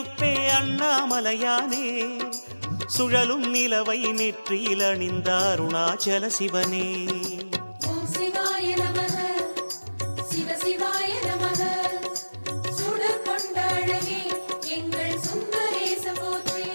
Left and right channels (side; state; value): both; inverted; correlation -1.00